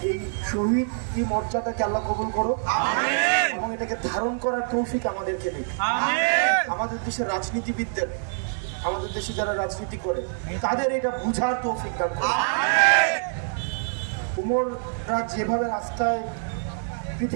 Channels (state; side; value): silent; left; 58 dB below the other